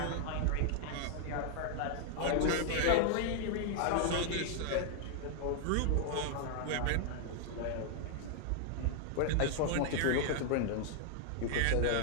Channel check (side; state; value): both; different; correlation 0.00